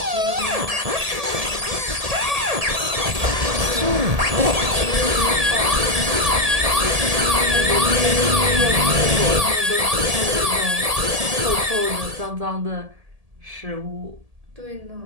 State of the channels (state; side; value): late; left; 1.8 ms